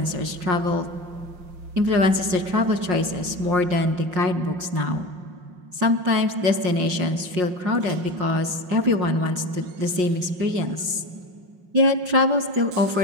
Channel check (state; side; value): late; left; 5.6 ms